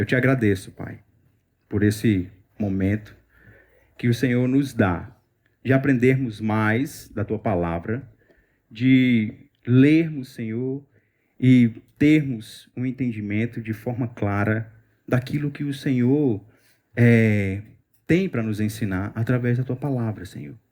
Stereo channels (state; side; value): identical; both; correlation 1.00